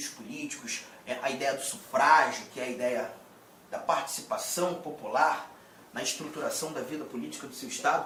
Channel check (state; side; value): identical; both; correlation 1.00